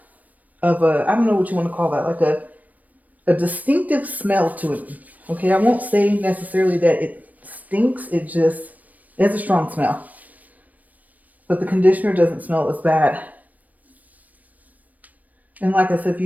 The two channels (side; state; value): left; late; 0.076 ms